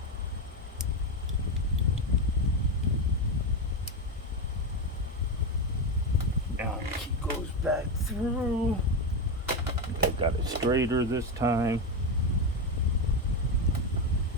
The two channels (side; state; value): both; normal; correlation 0.12